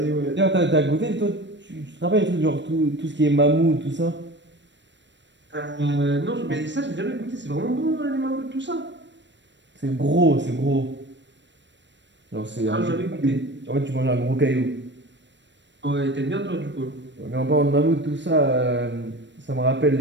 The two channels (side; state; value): left; late; 0.53 ms